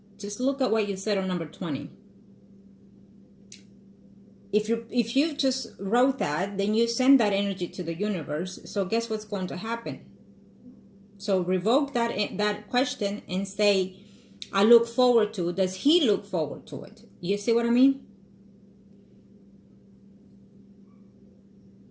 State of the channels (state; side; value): identical; both; correlation 1.00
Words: just look at what you said on number 20. If you just wrote that, then you send that energy to the universe. So guess what's going to happen? So revoke that question and say, I look forward to. Does he look forward to it? You see what I mean?